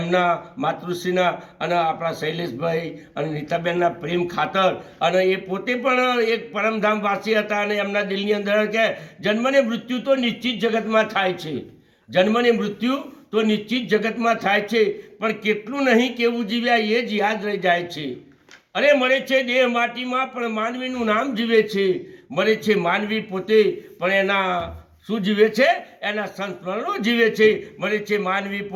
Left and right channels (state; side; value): identical; both; correlation 1.00